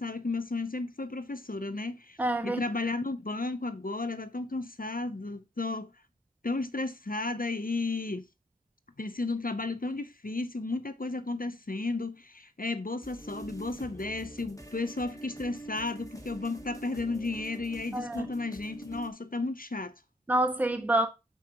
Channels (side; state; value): both; normal; correlation 0.66